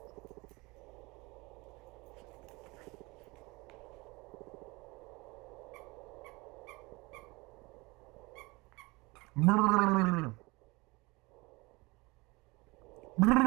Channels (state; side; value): quieter; left; 24.3 dB